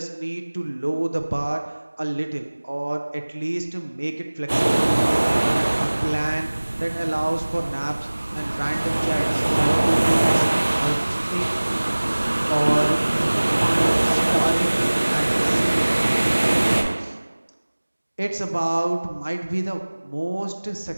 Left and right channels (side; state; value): both; inverted; correlation -1.00